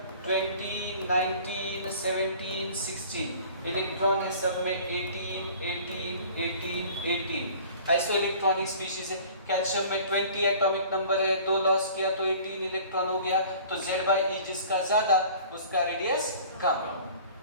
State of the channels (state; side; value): inverted; both; correlation -0.47